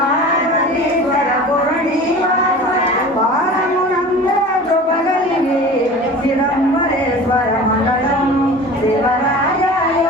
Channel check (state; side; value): normal; both; correlation 0.38